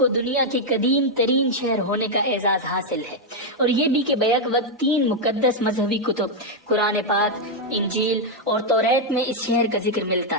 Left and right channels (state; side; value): normal; both; correlation -0.01